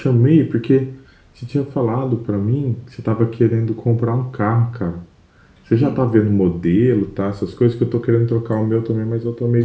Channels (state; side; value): identical; both; correlation 1.00